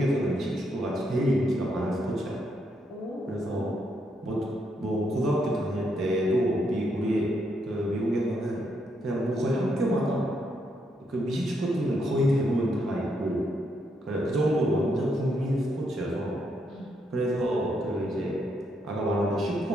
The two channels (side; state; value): both; normal; correlation 0.77